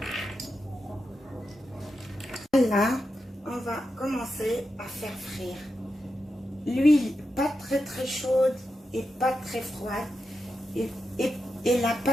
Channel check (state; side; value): normal; both; correlation 0.88